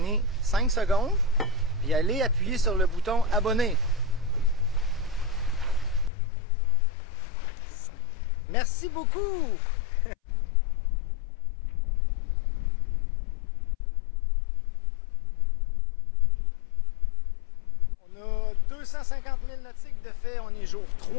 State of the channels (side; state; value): right; drops out; at 6.1 s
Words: 5 secondes et allez appuyer sur le bouton abonner. Merci beaucoup! On a 250 000 nautiques de fait, on est jour